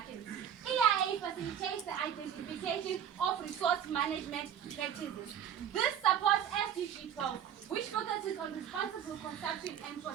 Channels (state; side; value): quieter; left; 9.1 dB